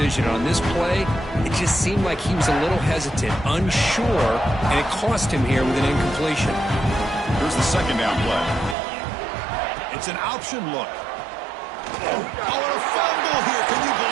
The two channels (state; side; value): drops out; left; at 8.8 s